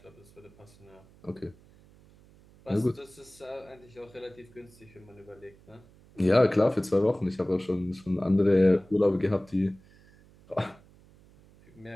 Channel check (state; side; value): noise; right; hum, 26 dB below the sound